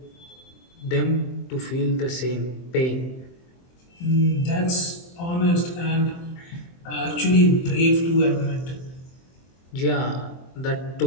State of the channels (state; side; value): late; right; 23 ms